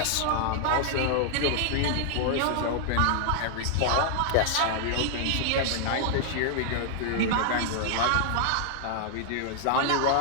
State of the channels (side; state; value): both; different; correlation 0.00